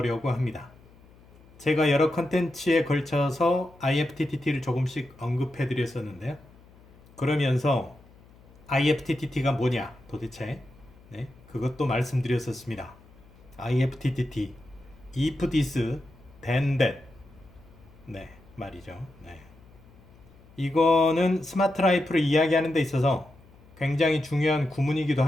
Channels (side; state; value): left; noise; hum, 25 dB below the sound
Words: 합니다. 제가 여러 컨텐츠에 걸쳐서 IFTTT를 조금씩 언급해 드렸었는데요. 그러면서 IFTTT가 뭐냐 도대체 그것도 말씀드렸었습니다. IFTTT if this then that 말이죠. 이거는 스마트 라이프를 이야기하는 데 있어서 굉장히 중요한 구문이기도